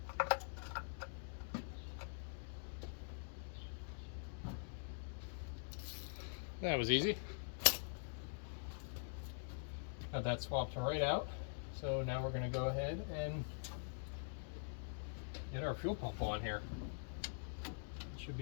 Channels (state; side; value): silent; right; digital silence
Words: That was easy. Got that swapped right out. So now we're going to go ahead and get our fuel pump on here. It should